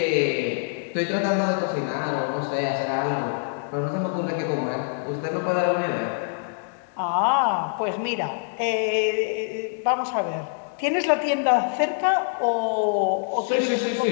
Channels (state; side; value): silent; right; digital silence